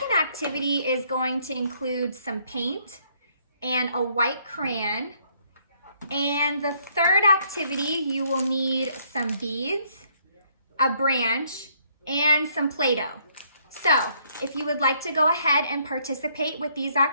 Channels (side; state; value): both; inverted; correlation -0.68